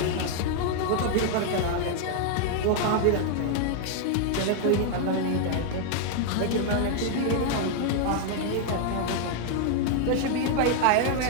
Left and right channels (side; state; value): both; different; correlation 0.00